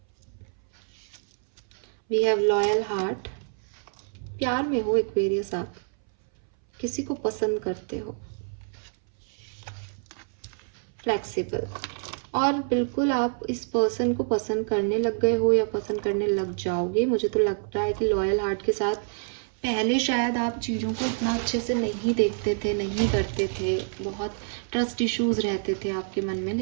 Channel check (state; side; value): silent; left; 60 dB below the other